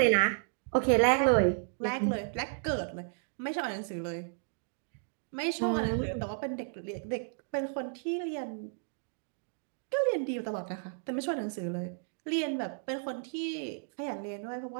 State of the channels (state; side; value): silent; left; digital silence